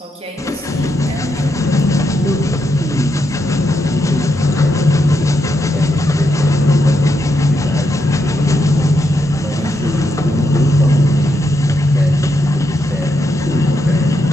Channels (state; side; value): normal; both; correlation 0.82